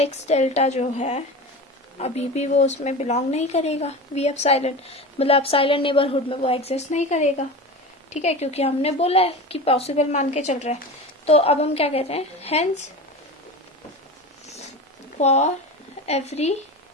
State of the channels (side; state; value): both; normal; correlation 0.28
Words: delta जो है अभी भी वो उसमें बिलोंग नहीं करेगा, v एप्सिलॉन, मतलब एप्सिलॉन नेबरहुड में वो एग्जिस्ट नहीं करेगा, ठीक है, क्योंकि हमने बोला है कि पॉसिबल मान के चल रहा है. तो अब हम क्या कहते हैं, hence for every